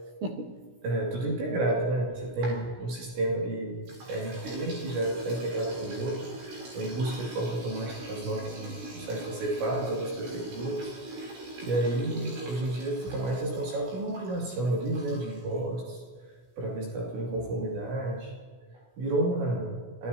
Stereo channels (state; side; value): late; left; 16 ms